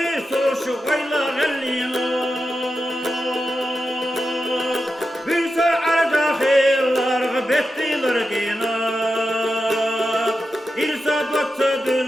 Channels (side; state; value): both; normal; correlation 0.90